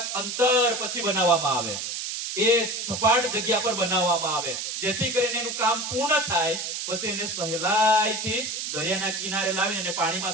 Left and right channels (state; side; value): noise; right; hiss, 4 dB below the sound